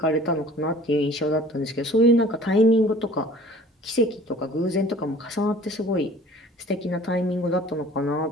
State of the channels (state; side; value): normal; both; correlation 0.49